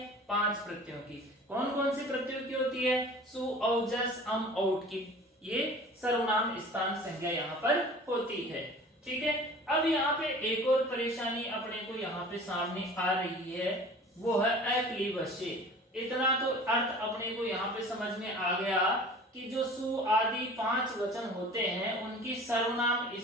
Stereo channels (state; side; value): normal; both; correlation 0.43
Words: 5 प्रत्ययों की। कौन कौन से प्रत्ययों की होती है? सु औ जस अम औट की, ये सर्वनाम स्थान संज्ञा यहाँ पर होती है। ठीक है, अब यहाँ पे एक और परेशानी अपने को यहाँ पे सामने आ रही है, वो है अक्लीबस्य। इतना तो अर्थ अपने को यहाँ पे समझ में आ गया कि जो सु आदि 5 वचन होते हैं उनकी सर्वनाम